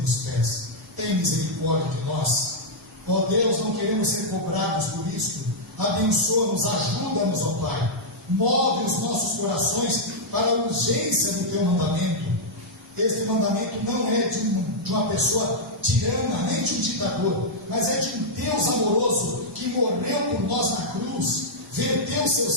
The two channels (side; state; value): both; normal; correlation -0.06